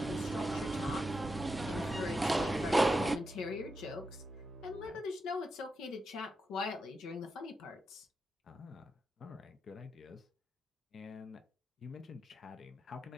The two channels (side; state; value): both; normal; correlation 0.87